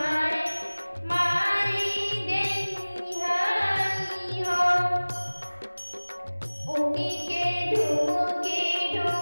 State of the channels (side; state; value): both; inverted; correlation -1.00